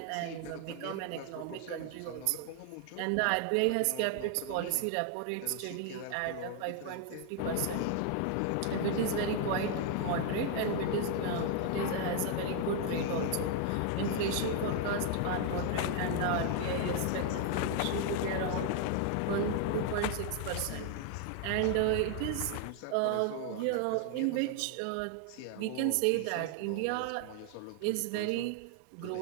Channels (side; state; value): both; different; correlation 0.00